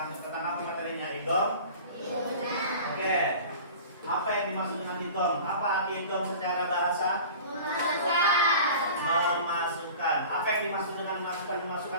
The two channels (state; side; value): inverted; both; correlation -0.40